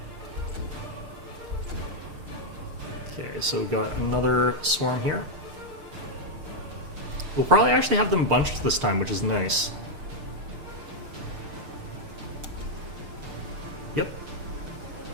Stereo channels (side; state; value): left; late; 6.6 ms